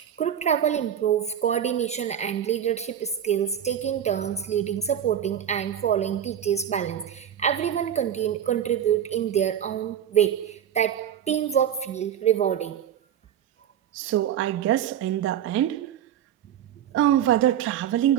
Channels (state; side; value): quieter; left; 9.7 dB